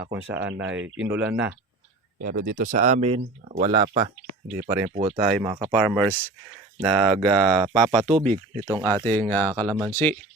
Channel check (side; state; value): left; quieter; 3.1 dB